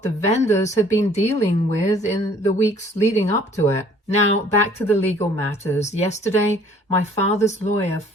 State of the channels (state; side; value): normal; both; correlation 0.56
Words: the vendors had been dealing with in the weeks leading up to it. Now, back to the legal matters. Yesterday, my father's lawyer